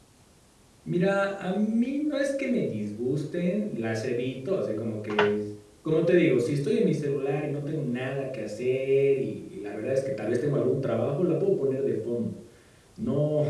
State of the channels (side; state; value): both; identical; correlation 1.00